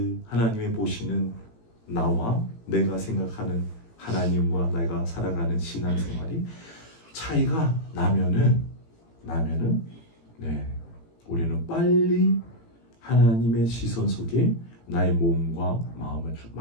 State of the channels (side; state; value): right; late; 18 ms